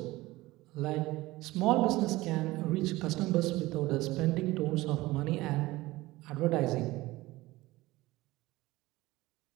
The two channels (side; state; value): left; quieter; 19.0 dB